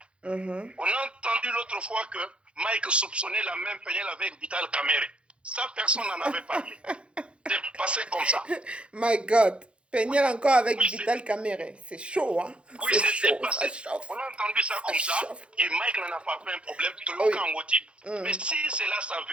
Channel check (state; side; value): late; left; 0.059 ms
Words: On a entendu l'autre fois que Mike soupçonnait la même Peniel avec Vital Kamere. Ça, personne n'en avait parlé. C'est passé comme ça. My God. Peniel encore avec Vital Kamere. C'est chaud, hein? Oui, c'est passé. On a entendu ça comme ça. Et Mike n'en a pas fait un problème. Mais si cela